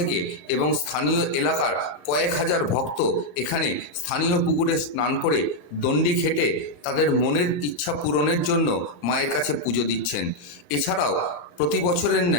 এবং স্থানীয় এলাকার কয়েক হাজার ভক্ত এখানে স্থানীয় পুকুরে স্নান করে দণ্ডি খেটে তাদের মনের ইচ্ছা পূরণের জন্য মায়ের কাছে পুজো দিচ্ছেন। এছাড়াও প্রতি বছরের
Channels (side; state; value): right; late; 34 ms